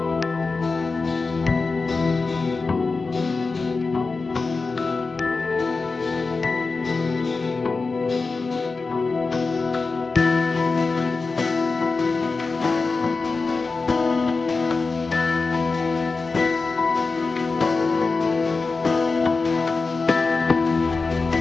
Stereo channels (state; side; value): quieter; right; 4.1 dB